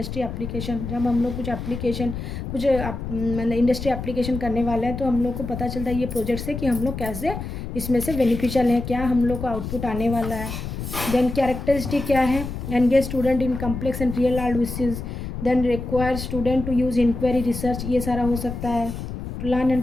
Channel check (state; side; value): noise; left; rumble, 7 dB below the sound